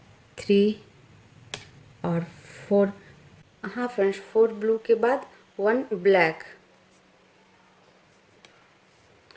3 और 4। हाँ फ्रेंड्स, 4 ब्लू के बाद 1 ब्लैक,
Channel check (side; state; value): both; identical; correlation 1.00